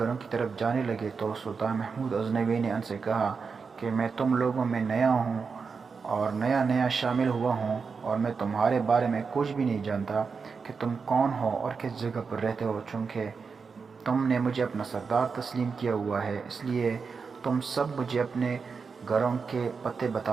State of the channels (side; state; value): left; quieter; 5.3 dB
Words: کی طرف جانے لگے تو سلطان محمود غزنوی نے ان سے کہا کہ میں تم لوگوں میں نیا ہوں اور نیا شامل ہوا ہوں اور میں تمہارے بارے میں کچھ بھی نہیں جانتا کہ تم کون ہو اور کس جگہ پر رہتے ہو۔ چونکہ تم نے مجھے اپنا سردار تسلیم کیا ہوا ہے اس لیے تم سب مجھے اپنے گھروں کے پتے